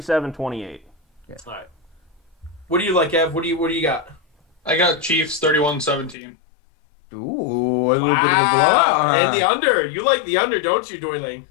Yeah. All right. What do you like, Ev? What do you got? I got Chiefs 31-17. Ooh, a little bit of a blowout. And the under. You like the under, don't you, Doyling?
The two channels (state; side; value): drops out; right; at 6.2 s